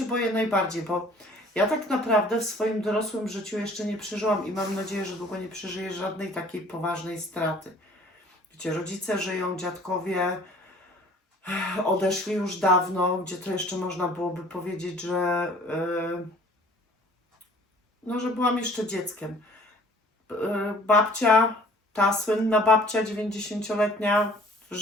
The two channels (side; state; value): both; normal; correlation 0.52